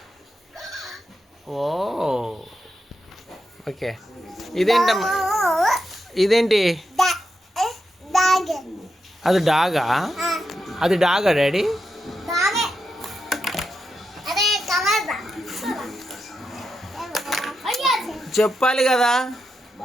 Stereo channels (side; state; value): both; normal; correlation 0.86